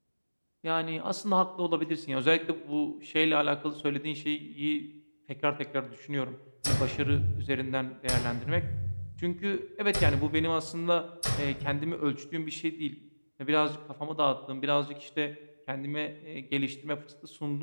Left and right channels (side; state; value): both; inverted; correlation -1.00